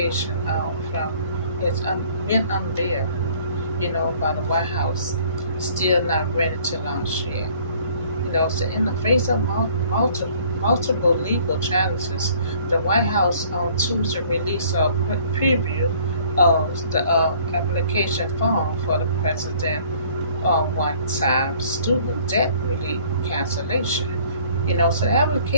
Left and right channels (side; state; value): both; inverted; correlation -0.56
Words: from it's been unveiled, by the White House, still not ready to launch yet. So in the face of multiple legal challenges, the White House on Tuesday released a preview of the application form for the president one-time student debt relief cancellation. So the